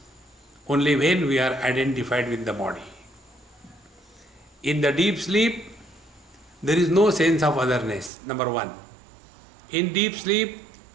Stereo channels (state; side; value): drops out; left; at 8.1 s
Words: only when we are identified with the body. In the deep sleep, there is no sense of otherness, number one. In deep sleep,